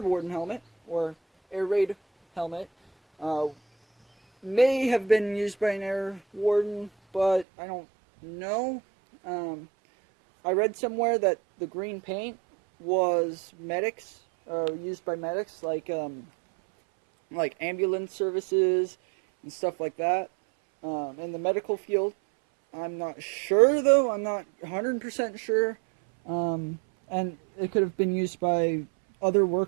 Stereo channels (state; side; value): drops out; left; at 7.5 s